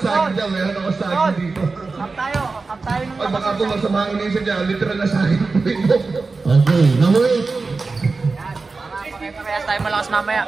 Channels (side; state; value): left; quieter; 4.0 dB